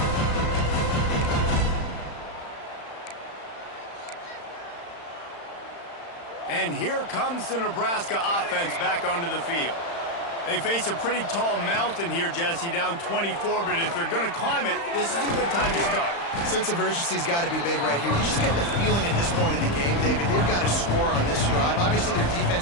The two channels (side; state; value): right; late; 35 ms